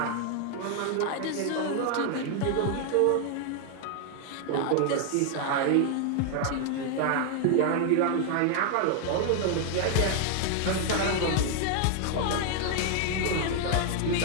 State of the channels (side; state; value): both; different; correlation 0.00